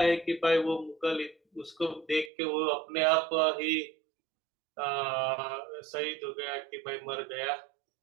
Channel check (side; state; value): left; drops out; at 2.3 s